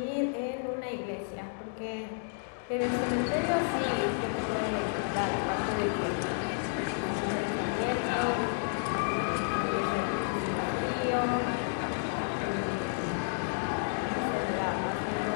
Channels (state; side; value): silent; right; digital silence